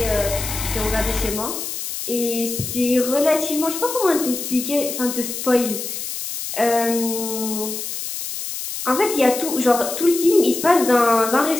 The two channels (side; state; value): left; noise; hiss, 6 dB below the sound